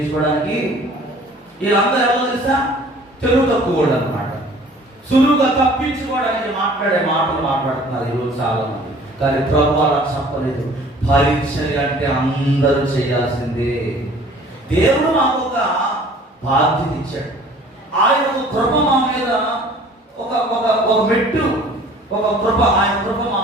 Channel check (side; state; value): both; normal; correlation 0.50